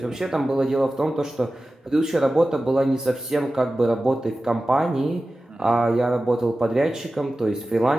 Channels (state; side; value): normal; both; correlation 0.95